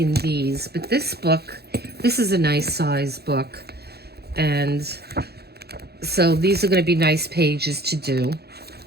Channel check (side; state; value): left; late; 0.47 ms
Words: these, but this book, this is a nice size book. And so these are going to be nice pages to do.